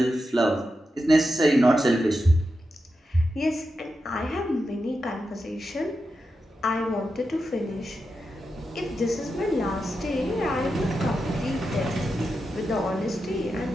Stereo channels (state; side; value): normal; both; correlation 0.89